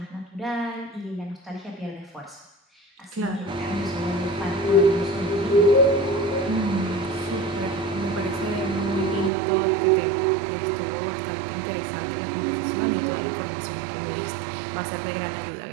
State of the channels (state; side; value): drops out; left; at 9.3 s